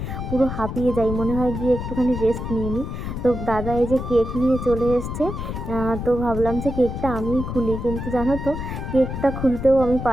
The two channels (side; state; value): left; noise; rumble, 5 dB below the sound